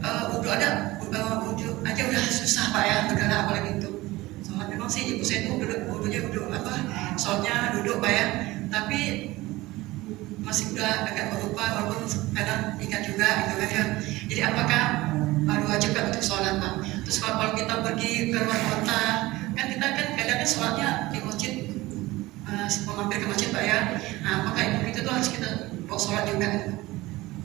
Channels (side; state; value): left; quieter; 19.3 dB